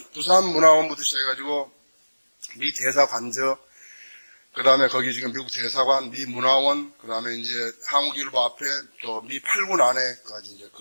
부산문화원부터 시작해가지고, 미 대사관저, 그 다음에 거기 지금 미국 대사관, 미 문화원, 그 다음에 이제 한국일보 앞에 또 미 8군 안에까지 이제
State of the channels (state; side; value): inverted; both; correlation -1.00